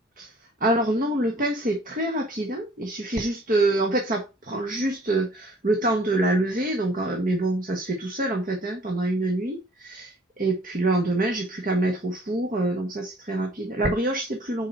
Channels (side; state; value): both; normal; correlation 0.55